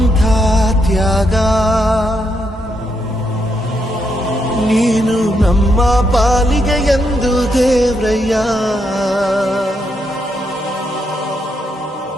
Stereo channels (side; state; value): both; normal; correlation 0.79